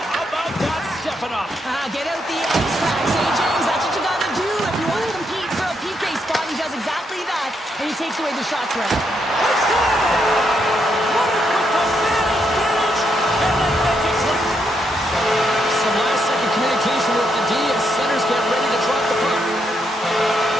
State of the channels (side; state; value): both; normal; correlation 0.78